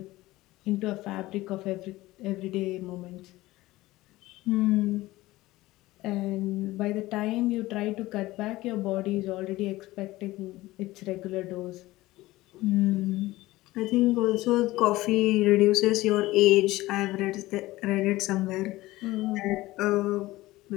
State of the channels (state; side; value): quieter; right; 18.1 dB